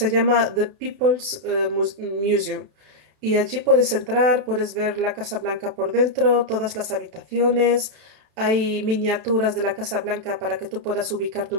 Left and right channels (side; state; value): left; late; 32 ms